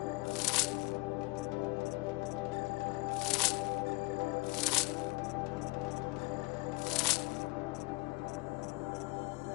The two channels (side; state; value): right; quieter; 25.3 dB